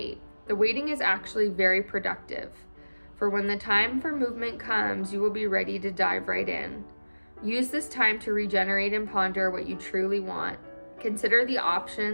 The waiting is actually very productive. For when the time for movement comes, you will be ready to dive right in. Use this time to regenerate and ponder what you truly want. Consider the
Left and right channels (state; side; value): inverted; both; correlation -1.00